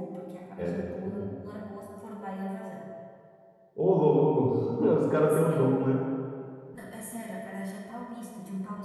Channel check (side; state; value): both; identical; correlation 1.00